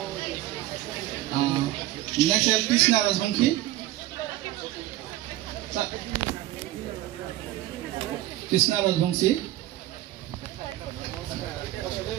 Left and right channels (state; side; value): quieter; left; 15.4 dB